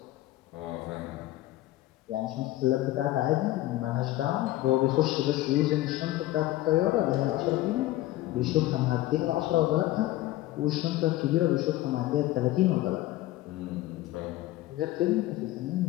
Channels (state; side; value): quieter; right; 16.1 dB